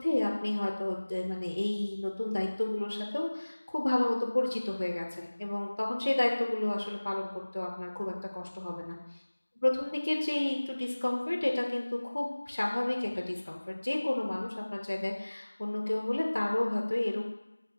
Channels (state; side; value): inverted; both; correlation -1.00